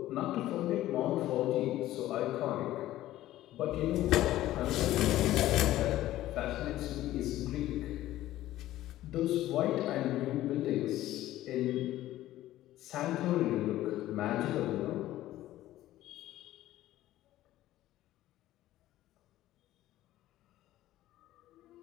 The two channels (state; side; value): quieter; right; 14.7 dB